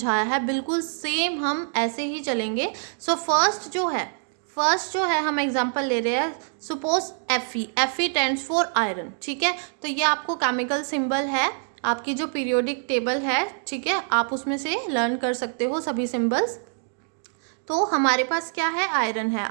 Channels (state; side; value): silent; left; 60 dB below the other